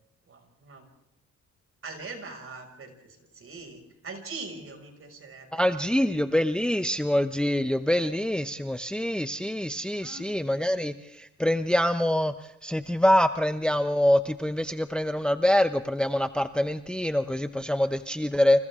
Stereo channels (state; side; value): normal; both; correlation 0.93